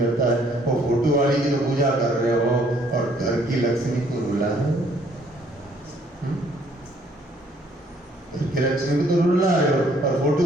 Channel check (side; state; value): both; normal; correlation 0.63